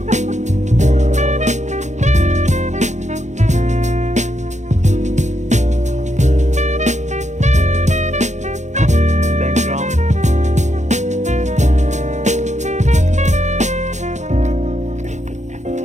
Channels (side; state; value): left; late; 0.34 ms